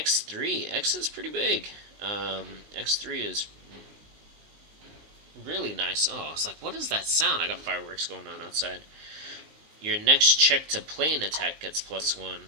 X is pretty big. X3 is really nice. Oh, it's like, what is that sound? I got fireworks going on outside. Your next check to play an attack gets +1.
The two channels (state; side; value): late; left; 19 ms